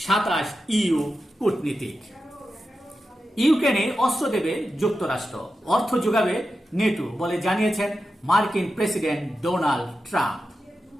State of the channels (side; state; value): both; normal; correlation 0.91